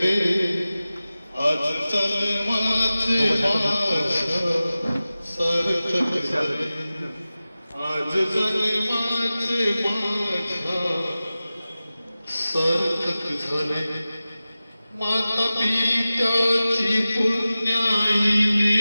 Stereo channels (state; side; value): inverted; both; correlation -0.96